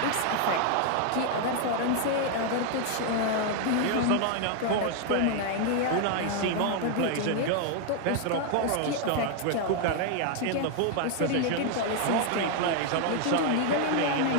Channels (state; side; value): different; both; correlation 0.00